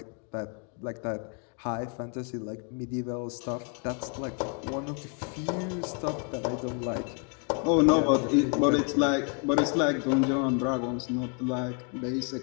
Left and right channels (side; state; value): right; quieter; 38.8 dB